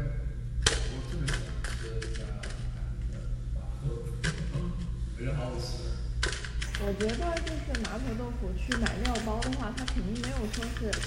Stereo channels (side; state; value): both; identical; correlation 1.00